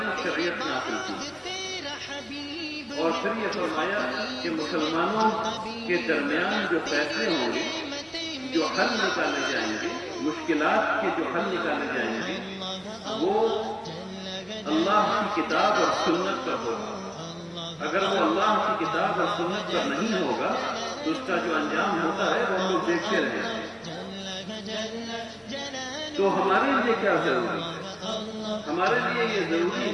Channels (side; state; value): both; identical; correlation 1.00